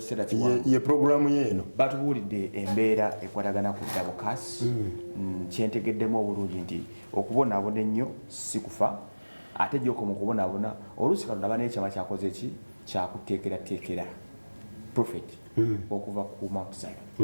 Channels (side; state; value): both; inverted; correlation -1.00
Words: kiwanvu ye programu yeeno batubuulidde embeera ekwatagana ku dabokasi kyentegeddemu obulungi nti okubonaabona ennyo si kufa ate gy'okoma okubonaabona oluusi Katonda aba n'ekyama kyakoze ki kyakuteekerateekera prophet okuva ku Mount